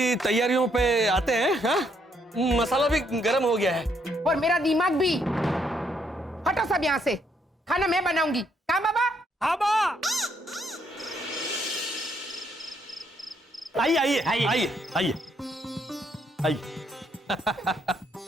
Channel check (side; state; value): both; normal; correlation 0.72